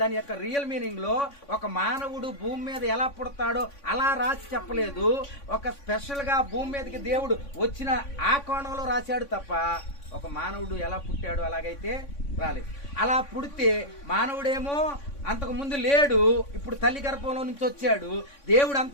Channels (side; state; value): right; late; 3.6 ms